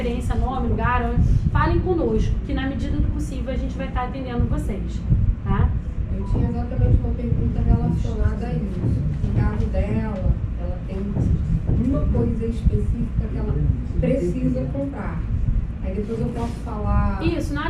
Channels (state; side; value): identical; both; correlation 1.00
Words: nome, lugar, falem conosco, que na medida do possível a gente vai estar atendendo vocês, tá? Eu tinha exatamente uma pergunta relacionada a isso. No caso dela, ela tem uma coisa específica que ela precisa comprar. Aí depois eu posso falar... Isso, na